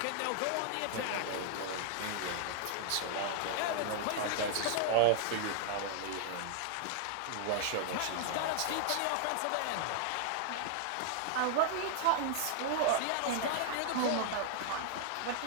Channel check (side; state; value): both; different; correlation -0.01